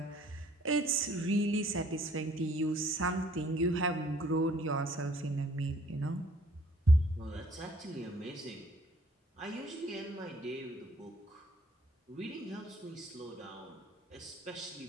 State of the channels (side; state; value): both; normal; correlation 0.59